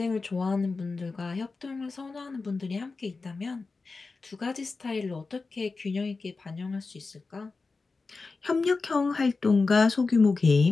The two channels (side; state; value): right; quieter; 4.0 dB